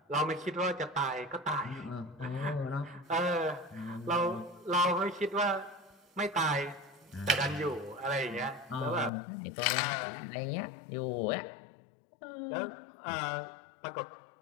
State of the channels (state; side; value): drops out; right; at 9.1 s